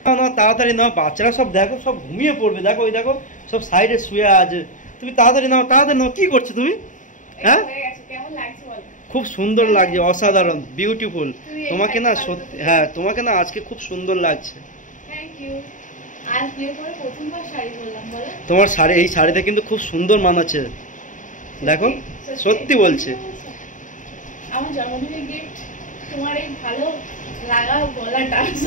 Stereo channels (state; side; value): late; right; 0.37 ms